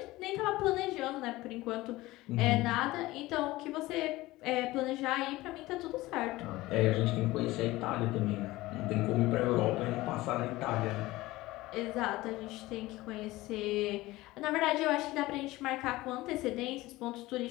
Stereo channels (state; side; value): quieter; right; 18.7 dB